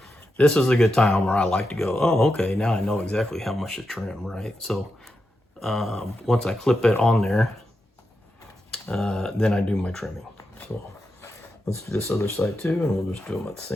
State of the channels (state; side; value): normal; both; correlation 0.87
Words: this is a good time where I like to go, oh, okay, now I know exactly how much to trim, right? So once I clip it on there, then I do my trimming. So let's do this other side too, and we'll just do them at the